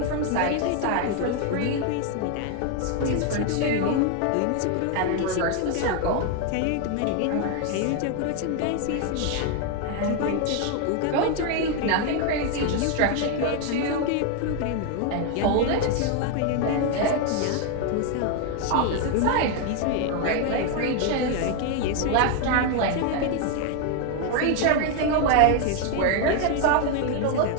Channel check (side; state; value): both; different; correlation 0.01